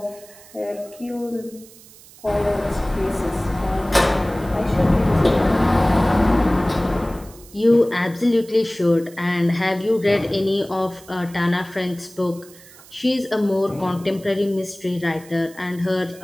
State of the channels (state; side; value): noise; right; hiss, 22 dB below the sound